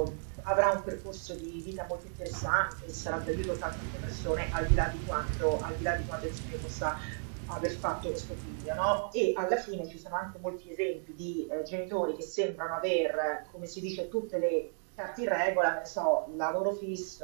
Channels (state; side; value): silent; left; digital silence